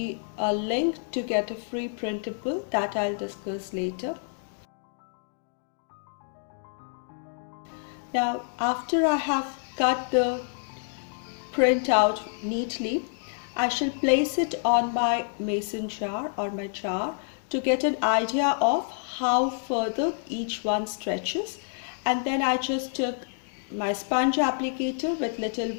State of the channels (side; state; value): right; silent; 59 dB below the other